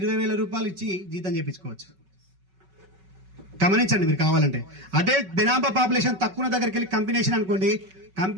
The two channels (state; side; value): late; left; 5.3 ms